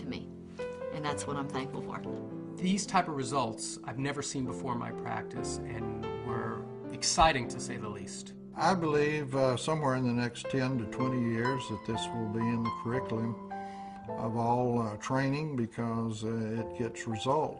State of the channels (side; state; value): both; identical; correlation 1.00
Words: me, and that's what I'm thankful for. These type of results I've never seen before in my practice and were exciting to say the least. I believe somewhere in the next 10 to 20 years that this will be in the curriculum of all training because it gets